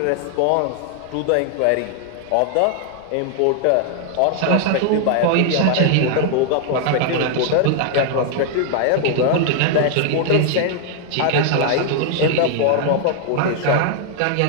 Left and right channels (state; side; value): different; both; correlation 0.00